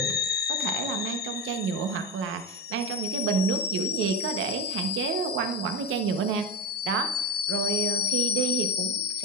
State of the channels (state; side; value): normal; both; correlation 0.17